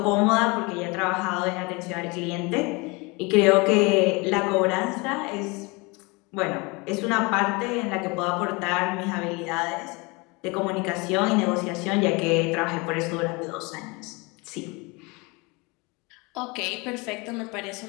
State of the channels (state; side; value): quieter; right; 27.1 dB